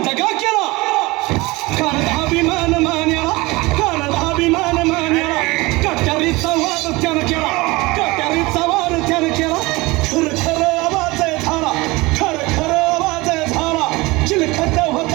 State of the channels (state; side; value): quieter; left; 22.4 dB